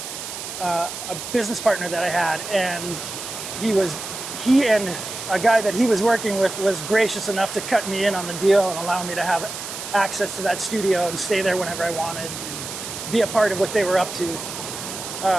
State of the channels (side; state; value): right; noise; hiss, 8 dB below the sound